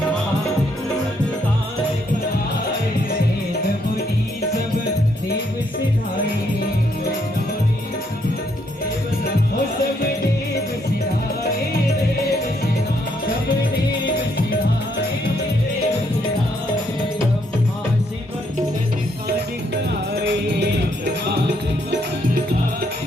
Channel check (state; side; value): normal; both; correlation 0.73